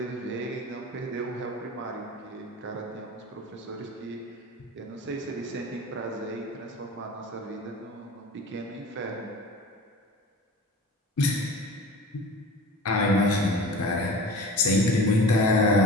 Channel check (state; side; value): normal; both; correlation 0.37